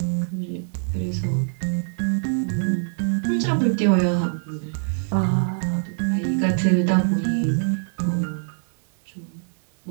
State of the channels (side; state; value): left; silent; digital silence